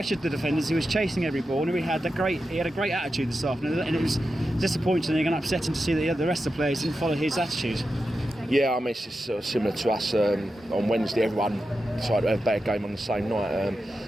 the defenders. He was chasing every ball, and he had a great attitude this afternoon. And it was disappointing and upsetting to see that the rest of the players didn't follow his attitude. Yeah, I mean, it's just sort of similar to us on Wednesday. Everyone decided to have a bad game on the same night.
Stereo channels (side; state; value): both; normal; correlation 0.90